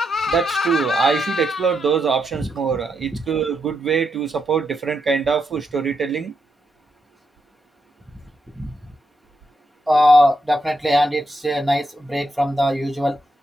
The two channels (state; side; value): normal; both; correlation 0.82